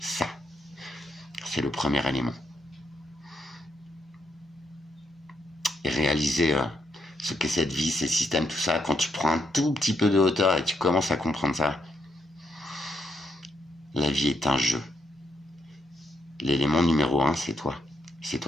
C'est le premier élément. Et réaliser ce qu'est cette vie, ces systèmes, tout ça, quand tu prends un tout petit peu de hauteur et tu commences à comprendre ça, la vie est un jeu. L'élément numéro 1, c'est toi. C'est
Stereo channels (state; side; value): normal; both; correlation 0.78